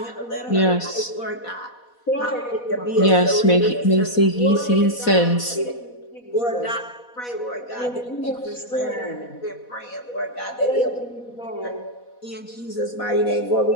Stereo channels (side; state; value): right; late; 4.1 ms